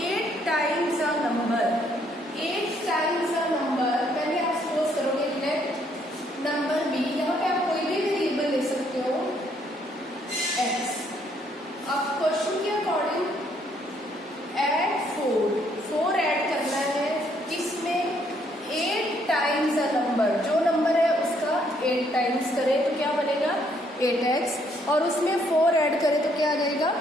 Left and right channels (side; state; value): both; normal; correlation 0.69